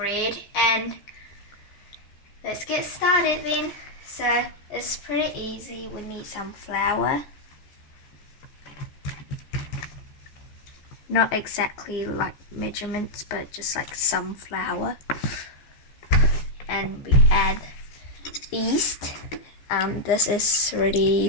and let's get started then. So it's pretty easy. We need some flour. Not exactly like measurements, but just like some flour. And we add yeast. This has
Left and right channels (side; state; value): right; late; 14 ms